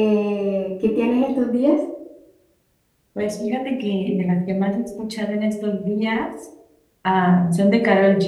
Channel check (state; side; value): identical; both; correlation 1.00